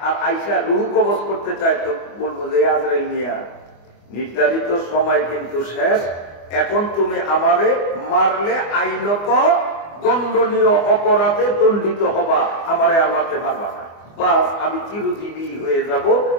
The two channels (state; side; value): late; right; 24 ms